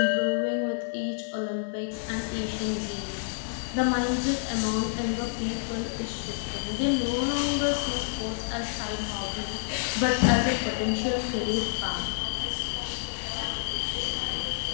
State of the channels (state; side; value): silent; right; digital silence